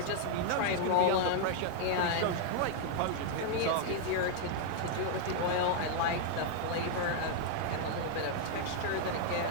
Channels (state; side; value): different; both; correlation 0.00